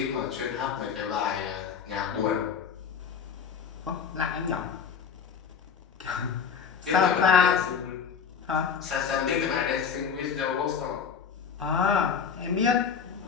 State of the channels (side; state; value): right; quieter; 6.7 dB